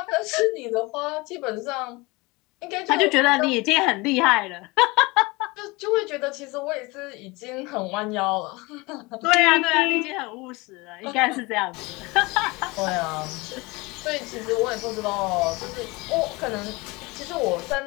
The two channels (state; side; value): quieter; right; 24.2 dB